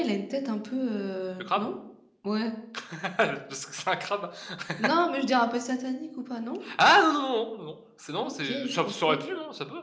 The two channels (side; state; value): both; identical; correlation 1.00